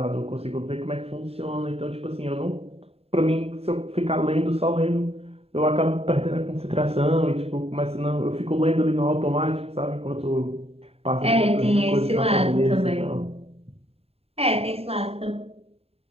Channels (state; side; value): late; left; 0.29 ms